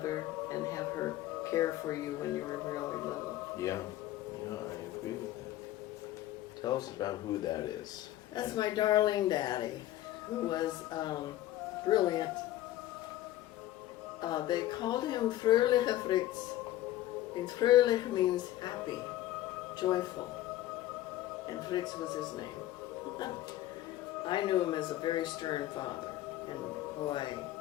and have her care for you when you were really little. Yeah, I agree with that. Tell us about who that is. That's my darling daddy, who was brilliant. They called him Fröhliche Fritz. And Fröhlich means happy, joyful. And Fritz was his name. I knew him as a very stern father. And boy,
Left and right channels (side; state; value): right; quieter; 14.3 dB